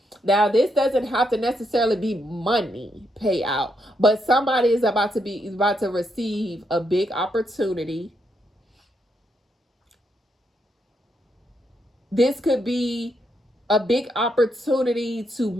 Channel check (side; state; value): both; normal; correlation 0.79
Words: Now, this doesn't have to necessarily be money payout, but somebody is about to receive a big opportunity. This could be a big opportunity to